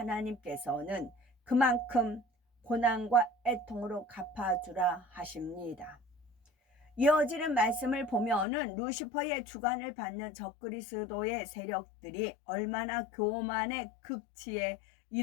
그만큼 고난과 애통으로 갚아주라 하십니다. 이어지는 말씀을 보면은 루시퍼의 주관을 받는 적그리스도의 세력들이 얼마나 교만의 극치에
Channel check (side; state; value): right; drops out; at 8.5 s